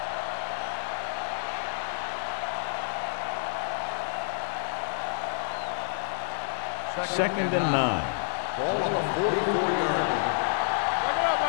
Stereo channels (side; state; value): right; silent; digital silence